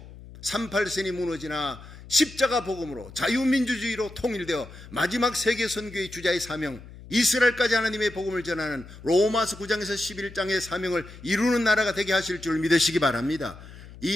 38선이 무너지나 십자가 복음으로 자유민주주의로 통일되어 마지막 세계선교의 주자의 사명, 이스라엘까지 하나님의 복음을 전하는 로마서 9장에서 11장의 사명을 이루는 나라가 되게 하실 줄 믿으시기 바랍니다.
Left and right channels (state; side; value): noise; left; hum, 17 dB below the sound